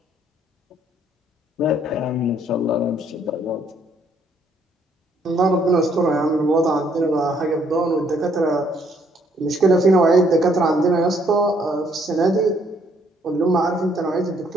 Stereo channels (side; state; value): both; normal; correlation 0.67